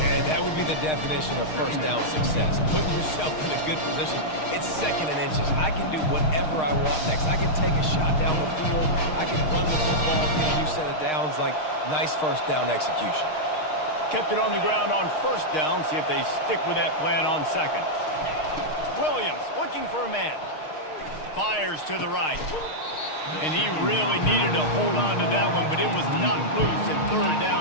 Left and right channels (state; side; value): late; right; 6.5 ms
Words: And that would be the definition of first down success. Putting yourself in a good position. It's 2nd and inches. I can do whatever I want next. I can take a shot down the field. I can run the football, get a new set of downs. Like, nice first down execution. Kept it on the ground on first down. See if they stick with that plan on 2nd. Williams looking for a man. Fires to the right. And he really needed to hold on to that one, but it was not loose, and 3rd